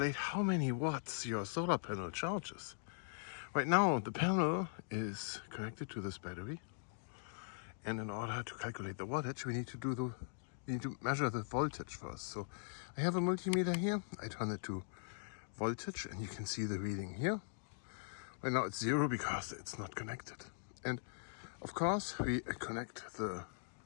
how many watts your solar panel charges. Right now the panel is connected to this battery, and in order to calculate the wattage we need to measure the voltage first. So I have a multimeter here, I turn it to voltage and you can see the reading here. Right now it's 0 because it's not connected. And of course we connect the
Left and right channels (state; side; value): silent; right; digital silence